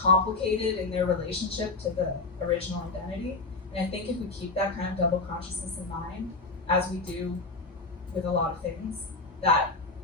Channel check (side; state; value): right; quieter; 3.6 dB